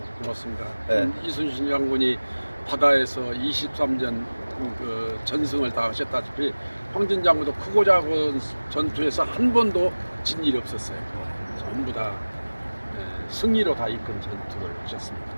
고맙습니다. 네. 이순신 장군이 바다에서 23전 그 전승을 다 하셨다시피 황진 장군도 크고 작은 전투에서 한 번도 진 일이 없었어요. 전부 다 승리로 다 이끈 전투를 하셨습니다.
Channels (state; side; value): inverted; both; correlation -1.00